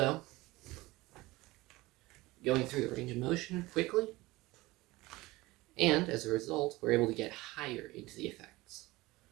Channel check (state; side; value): quieter; left; 20.2 dB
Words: going through the range of motion quickly, and as a result, we're able to get higher into the effects.